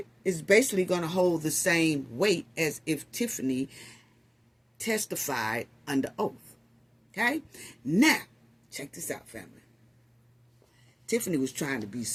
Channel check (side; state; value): both; identical; correlation 1.00